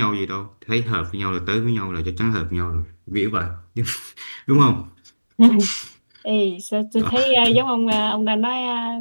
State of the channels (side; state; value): both; inverted; correlation -1.00